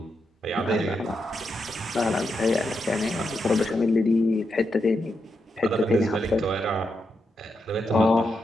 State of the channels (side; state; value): both; normal; correlation 0.84